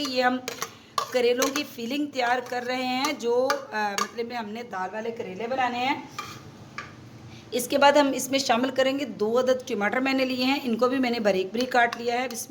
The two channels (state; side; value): identical; both; correlation 1.00